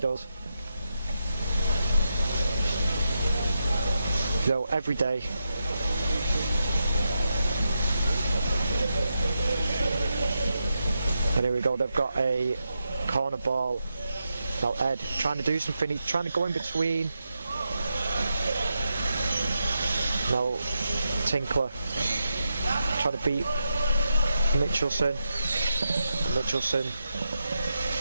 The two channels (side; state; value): both; inverted; correlation -0.86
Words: You know, every day. And here we go. They've got a corner ball. Now Ed trying to do something. He's trying to go in between. Now Tinkler trying to beat Mitchelson. Mitchelson.